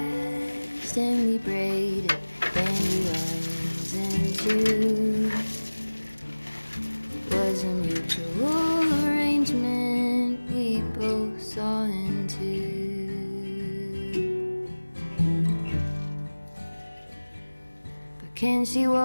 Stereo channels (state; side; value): inverted; both; correlation -1.00